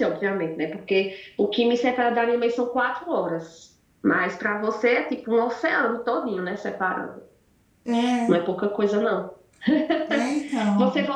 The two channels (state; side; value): identical; both; correlation 1.00